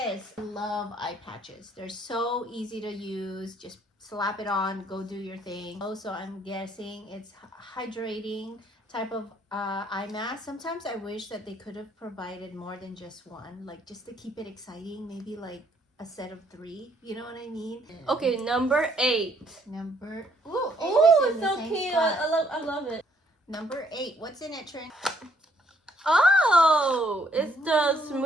I love eye patches. They're so easy to use. Just slap it on, go do your thing. Also, I'm guessing it's hydrating type of eye mask. Sometimes I wish that they could have provided more than just one, like just to keep it exciting, maybe like a set of 3. You know what I mean? Okay, number 8. Number Ooh, it's it's so cute. I love it. Number 8. What's in it, Trin? Oh, it's the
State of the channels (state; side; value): normal; both; correlation 0.67